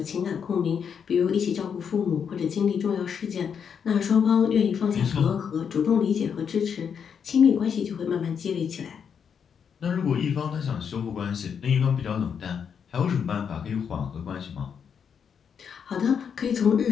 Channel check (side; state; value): right; quieter; 7.2 dB